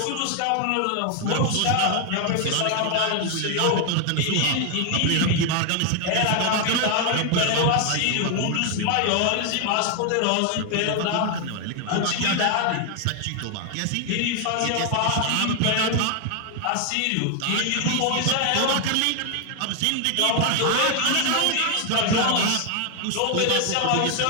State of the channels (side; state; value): both; different; correlation 0.00